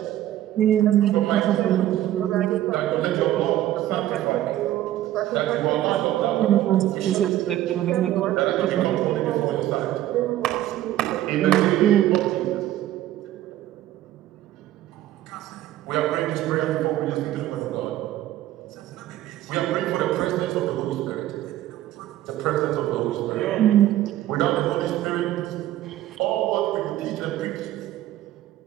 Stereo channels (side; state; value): left; quieter; 13.5 dB